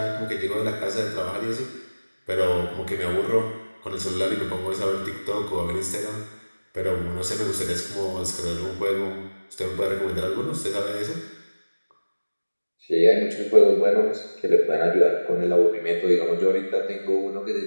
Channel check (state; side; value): inverted; both; correlation -1.00